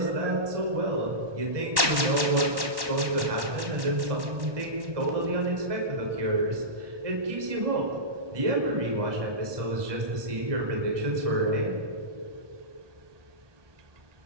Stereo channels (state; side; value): late; left; 1.1 ms